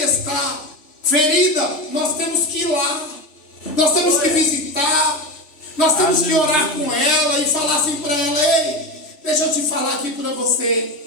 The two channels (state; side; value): late; right; 3.5 ms